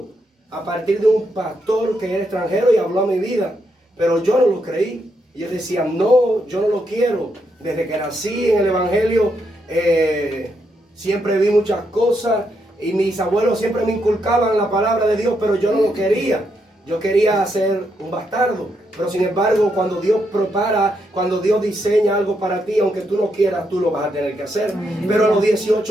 a partir de un pastor que era extranjero y habló a mi vida. Pero yo no lo creí. Y yo decía, no, yo no lo quiero. Desde que nací en el Evangelio, siempre vi muchas cosas. Y mis abuelos siempre me inculcaban la palabra de Dios, pero yo no lo quería. Yo quería ser un bastardo. Pero sin embargo, cuando Dios prepara, cuando Dios diseña algo para ti, aunque tú no quieras, tú lo vas a tener que hacer. Pero a los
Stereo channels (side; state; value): both; normal; correlation 0.79